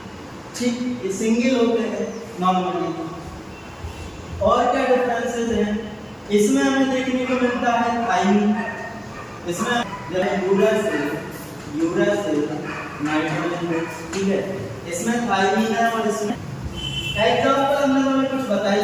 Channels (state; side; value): identical; both; correlation 1.00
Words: ठीक, ये सिंगल होते हैं नॉर्मली। और क्या डिफरेंसेस हैं, इसमें हमें देखने को मिलता है थाइमिन, इसमें यूरासिल नाइट्रोजन फिक्स। ठीक है, इसमें थाइमिन है और इसमें एग्जांपल हमने हमें कुछ बताई